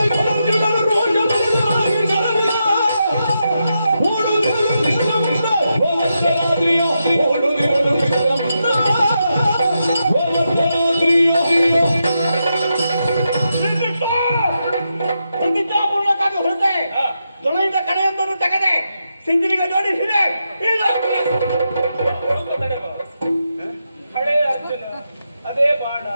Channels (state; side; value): inverted; both; correlation -0.86